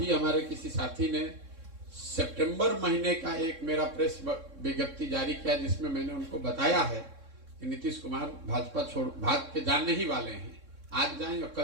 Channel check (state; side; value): late; left; 3.6 ms